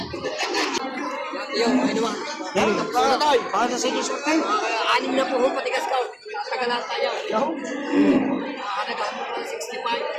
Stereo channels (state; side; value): identical; both; correlation 1.00